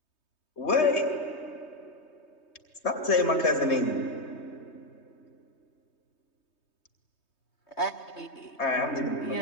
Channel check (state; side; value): late; right; 3.2 ms